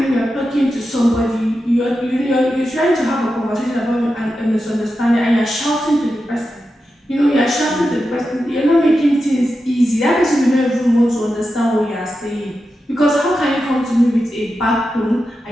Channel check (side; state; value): both; normal; correlation 0.90